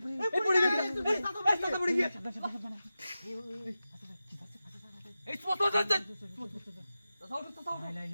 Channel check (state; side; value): inverted; both; correlation -0.94